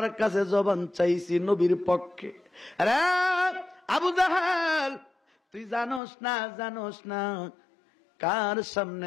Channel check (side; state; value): right; drops out; at 6.0 s